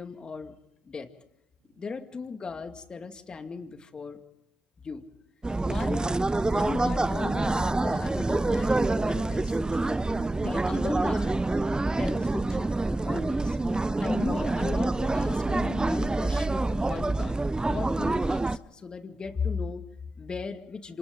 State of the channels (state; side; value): normal; both; correlation 0.95